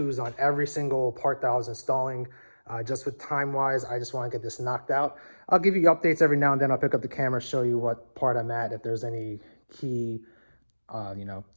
on every single part that I was installing. Just with time-wise, I just want to get this knocked out. I'll give you updates every now and then. I'll pick up the camera, show you what part I'm at, if there's any key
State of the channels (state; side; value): inverted; both; correlation -1.00